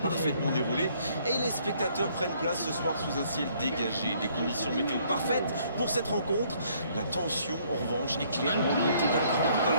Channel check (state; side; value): inverted; both; correlation -0.64